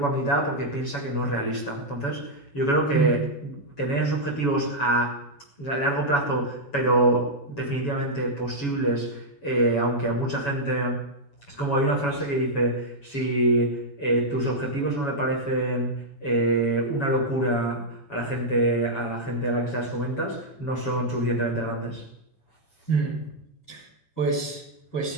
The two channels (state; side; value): late; right; 7.1 ms